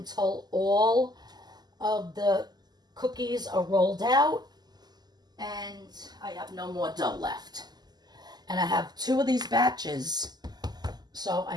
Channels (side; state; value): left; late; 0.20 ms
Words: all of the cookies are rolled out and I have no more dough left. And I have 2 of these batches, so I